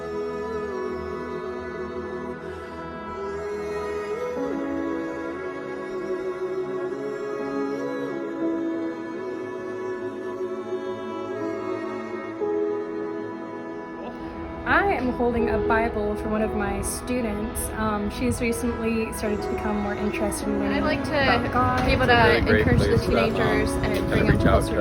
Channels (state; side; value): identical; both; correlation 1.00